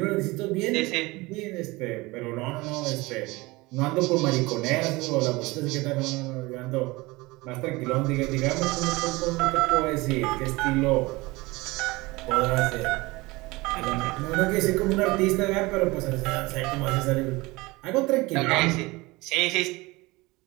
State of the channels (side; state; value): left; quieter; 22.3 dB